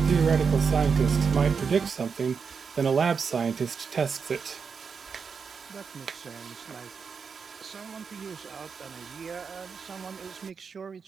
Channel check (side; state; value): left; quieter; 5.8 dB